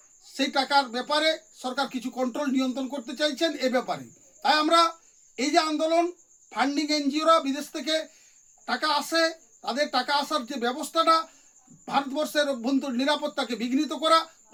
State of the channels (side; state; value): both; identical; correlation 1.00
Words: সেই টাকার ব্যাপারে সরকার কিছু কন্ট্রোল নিয়ন্ত্রণ করতে চাইছেন এ ব্যাপারে। তাই আমরা এই যে আন্দোলন, ফান্ডিং এনজিওরা বিদেশ থেকে টাকা আসে, তাদের টাকা আসার যে ব্যবস্থাটা, ভারতবর্ষের অভ্যন্তরীণ নিরাপত্তাকে বিঘ্নিত করা,